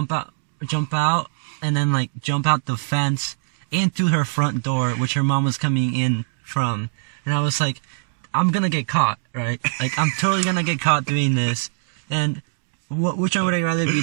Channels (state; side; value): silent; left; digital silence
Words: out, and then like jump out the fence into her front door, which her mom was coming in from, and I was like, I'm gonna get caught, right? Like, I'm totally gonna get caught doing this. And which one would I rather